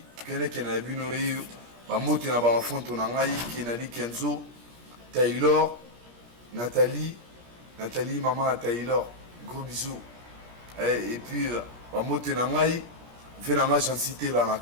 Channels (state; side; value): late; left; 17 ms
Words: Kene Abino Yeyo, Mamote na Bamafonto Nangaï, Kenali Kenzo, Taylor, Nathalie, maman Taylor, gros bisous. Et puis Mamote Nangaï, Venanga j'en cité là,